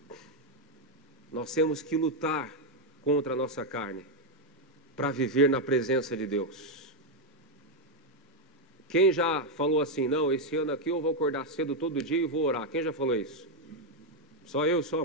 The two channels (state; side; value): normal; both; correlation 0.03